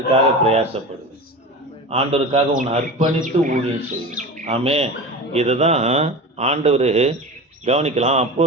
பிரயாசப்படுது. ஆண்டவருக்காக உன்னை அர்ப்பணித்து ஊழியம் செய்யும். ஆமே, இதுதான் ஆண்டவர் கவனிக்கலாம். அப்போ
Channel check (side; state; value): both; normal; correlation 0.30